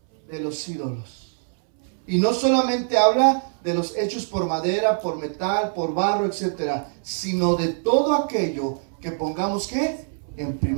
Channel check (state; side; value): silent; left; 63 dB below the other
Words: de los ídolos. Y no solamente habla de los hechos por madera, por metal, por barro, etcétera, sino de todo aquello que pongamos ¿qué? En